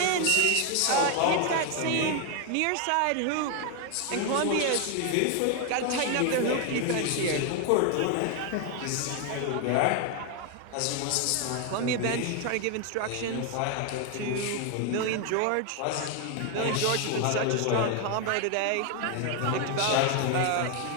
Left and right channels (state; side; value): different; both; correlation 0.01